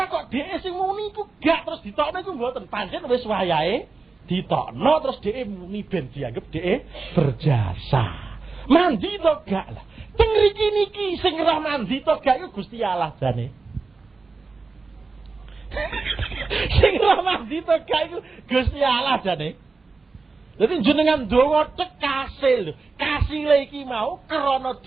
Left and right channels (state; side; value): quieter; left; 4.1 dB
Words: kok dhek sing muni iku gak terus ditokno iku mboten pancen wis wayahe ditokno terus dhek muni ben dianggap dhek berjasa. Mandi to gak lah. Teng mriki niki sing ora mandi to gak iku Gusti Allah jane. Sing ora mandi to gak iku Gusti Allah jane. Dadi jenengan donga cek kasil. Kasile iki mau krana